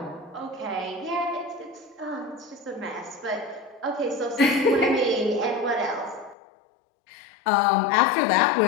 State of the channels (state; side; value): drops out; right; at 6.4 s